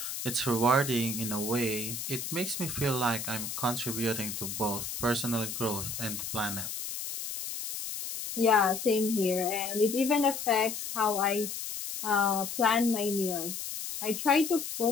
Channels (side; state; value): left; noise; hiss, 6 dB below the sound